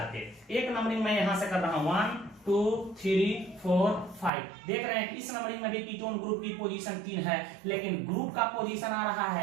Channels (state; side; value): drops out; left; at 4.3 s